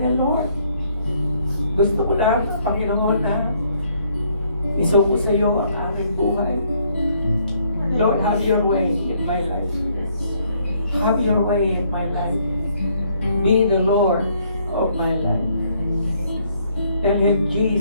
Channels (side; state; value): both; inverted; correlation -0.67